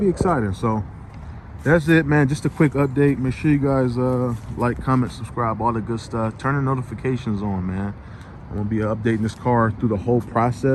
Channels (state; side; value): identical; both; correlation 1.00